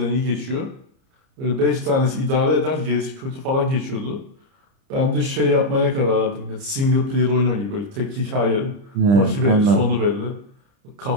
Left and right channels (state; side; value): late; left; 30 ms